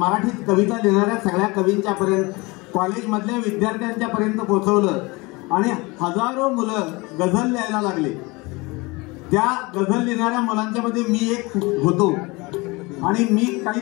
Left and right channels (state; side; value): quieter; right; 24.8 dB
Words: कविता लिहिणाऱ्या सगळ्या कवींच्या पर्यंत, कॉलेजमधल्या विद्यार्थ्यांच्या पर्यंत पोहोचवलं आणि हजारो मुलं गझल लिहायला लागले। त्या गझल लिहिणाऱ्या मुलांच्या मध्ये मी एक होतो आणि मी काही